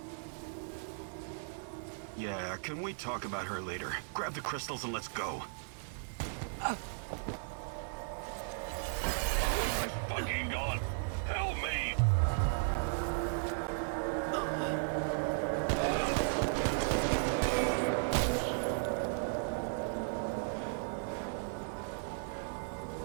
Yeah, can we talk about her later? Grab the crystals and let's go. My fucking God! Help me!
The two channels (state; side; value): silent; left; 54 dB below the other